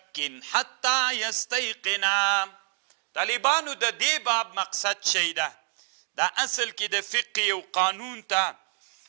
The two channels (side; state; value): left; silent; digital silence